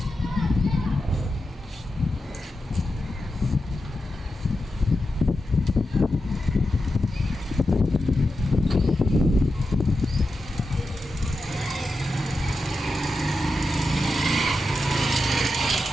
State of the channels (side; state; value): both; normal; correlation 0.89